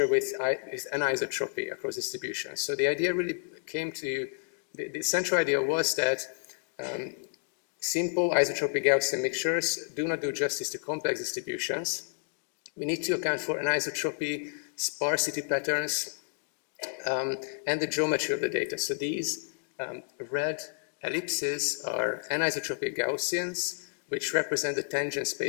with anisotropy across distributions. So the idea really came to, the central idea was that simple isotropic Gaussian mixtures do not do justice to complex distributions. We need to account for anisotropy, sparsity patterns, and the geometry of the data. So these red ellipses are anisotropic Gaussians, which represent the tangent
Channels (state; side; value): silent; right; digital silence